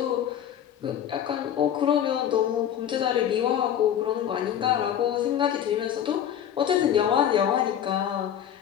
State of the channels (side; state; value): right; quieter; 9.8 dB